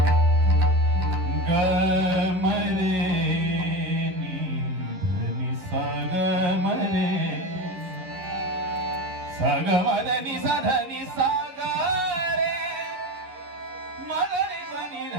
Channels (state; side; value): late; left; 11 ms